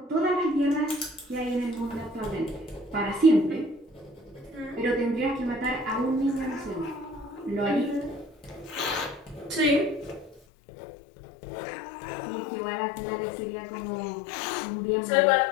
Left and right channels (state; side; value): drops out; right; at 10.4 s